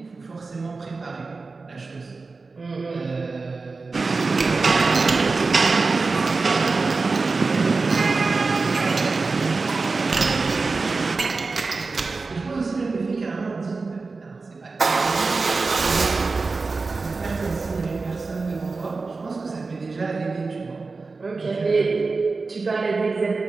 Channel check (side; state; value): left; quieter; 4.0 dB